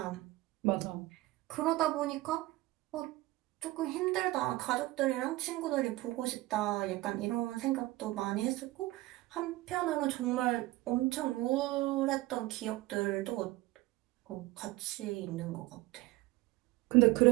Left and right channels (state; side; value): quieter; left; 18.9 dB